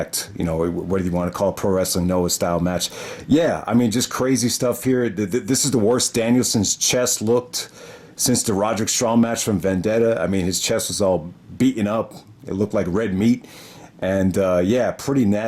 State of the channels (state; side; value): identical; both; correlation 1.00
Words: What do you want to call it? Pro Wrestling Noah style match. Yeah, I mean, just crazy stuff here. This is the worst Danielson's chest looked since the Roderick Strong match from Vendetta. I mean, his chest was all beaten up. It looked like red meat. And pretty